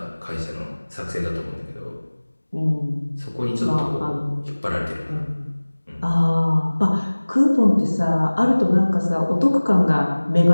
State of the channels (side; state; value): both; inverted; correlation -1.00